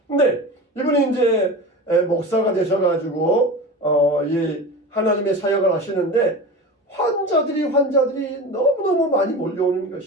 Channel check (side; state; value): both; normal; correlation 0.30